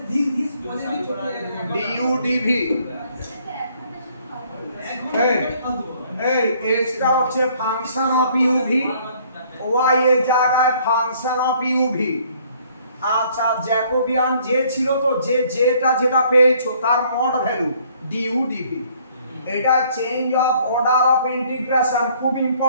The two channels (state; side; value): inverted; both; correlation -0.61